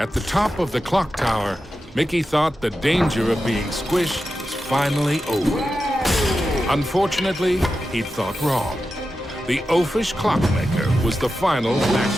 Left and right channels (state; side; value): normal; both; correlation 0.91